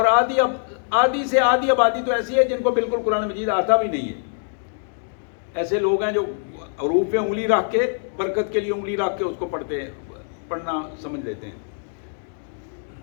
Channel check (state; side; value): silent; right; digital silence